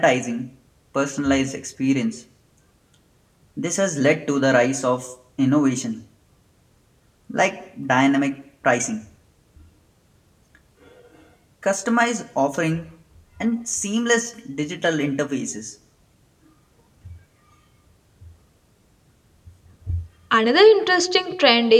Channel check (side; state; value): both; identical; correlation 1.00